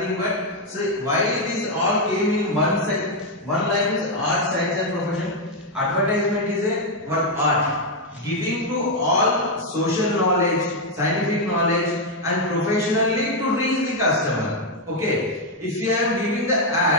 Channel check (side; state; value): both; normal; correlation 0.02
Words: but So why these all came in one section? One line is art, science and profession. Advertisement is a one art, giving to all social knowledge, scientific knowledge and professionally to reach the customer. Okay, if you are giving the